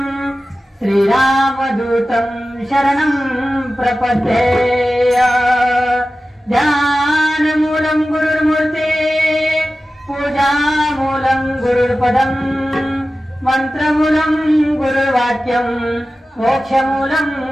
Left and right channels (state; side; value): normal; both; correlation 0.95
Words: श्रीरामदूतं शरणं प्रपद्ये ध्यानमूलं गुरुर्मूर्ति पूजामूलं गुरुर्पदं मंत्रमूलं गुरुर्वाक्यं मोक्षमूलं